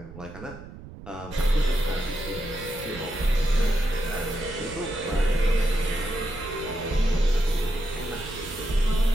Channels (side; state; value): right; noise; rumble, 15 dB below the sound